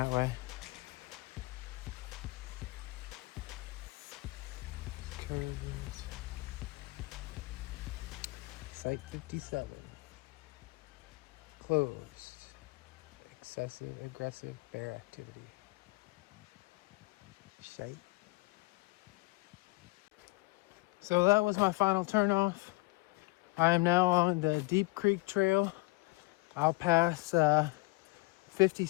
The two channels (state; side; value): quieter; right; 24.9 dB